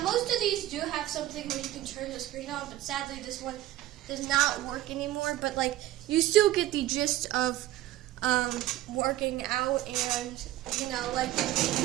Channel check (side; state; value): left; quieter; 14.8 dB